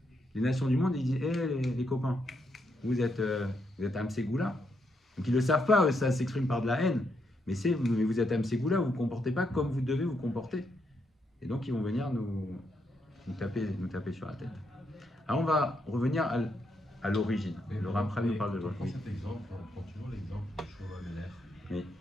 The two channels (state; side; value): normal; both; correlation 0.79